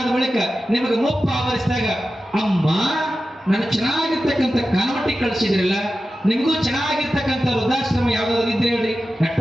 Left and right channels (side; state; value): both; normal; correlation 0.93